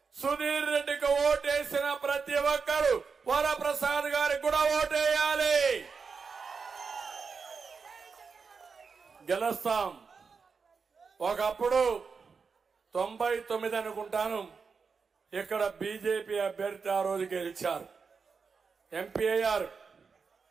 సుధీర్ రెడ్డికి ఓటేసిన ప్రతి ఒక్కరు వరప్రసాద్ గారికి కూడా ఓటేయాలి. గెలుస్తాం. ఒకప్పుడు 99 అనుకుంటాను ఇక్కడ బీజేపీ అభ్యర్థి ఆ రోజు గెలిచారు. ఎంపీ అయ్యారు,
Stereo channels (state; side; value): quieter; left; 5.3 dB